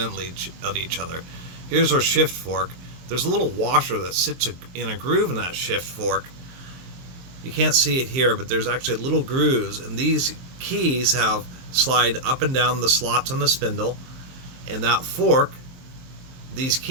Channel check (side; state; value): left; late; 23 ms